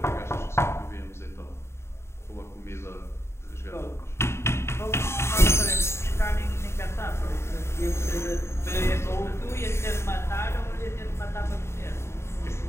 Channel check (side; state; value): right; late; 0.13 ms